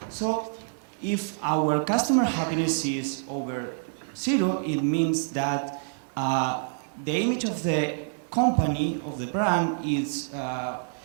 So if our customer happiness is over 0, it means that the image of the company, of the brand, it's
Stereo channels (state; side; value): silent; left; 60 dB below the other